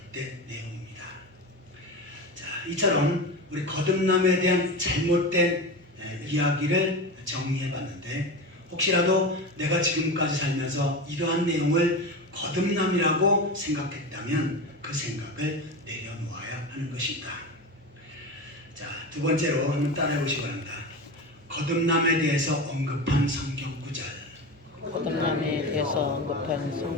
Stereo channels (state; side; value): normal; both; correlation 0.24